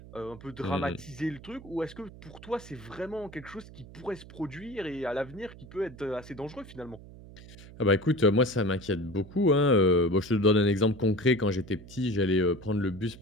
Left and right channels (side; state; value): right; noise; hum, 18 dB below the sound